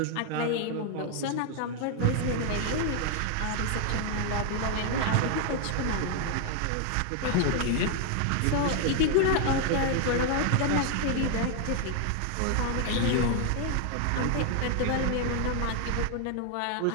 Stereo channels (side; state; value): both; different; correlation 0.00